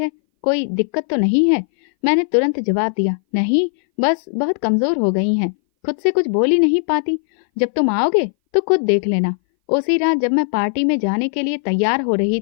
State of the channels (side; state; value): right; silent; 61 dB below the other